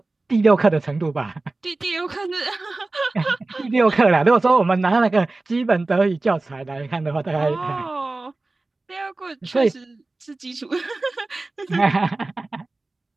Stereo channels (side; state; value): left; quieter; 3.2 dB